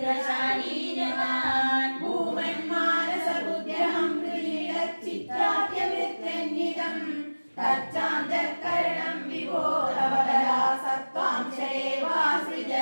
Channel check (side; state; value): both; inverted; correlation -1.00